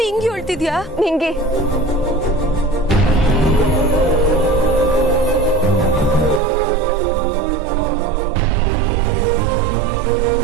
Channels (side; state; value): left; drops out; at 6.4 s